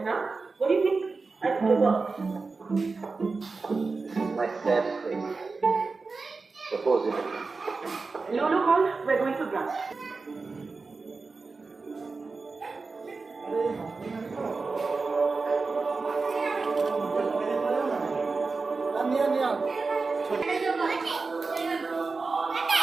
now. What do you think? I'll go work. This is my sad face. Suppose it. Lulu called. We're going for brunch.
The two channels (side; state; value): left; quieter; 4.1 dB